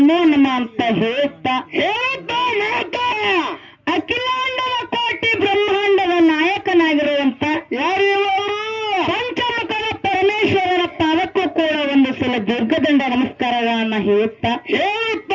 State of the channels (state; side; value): identical; both; correlation 1.00